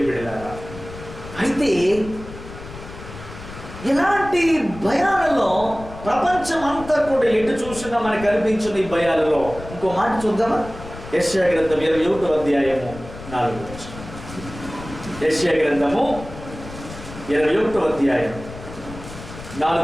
బిడ్డలారా. అయితే ఇలాంటి భయాలలో ప్రపంచం అంతా కూడా ఎటు చూసినా మనకు కనిపించిన ఈ భయాలలో ఇంకో మాట చూద్దామా? యెషయా గ్రంథం 21వ అధ్యాయము 4వ వచనం. యెషయా గ్రంథము 21వ అధ్యాయం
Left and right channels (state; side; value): noise; left; rumble, 14 dB below the sound